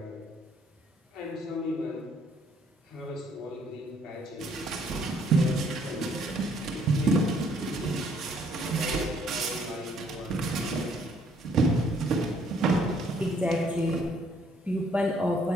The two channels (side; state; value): both; normal; correlation 0.65